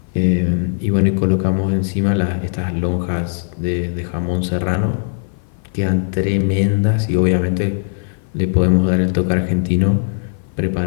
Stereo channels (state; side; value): silent; right; 56 dB below the other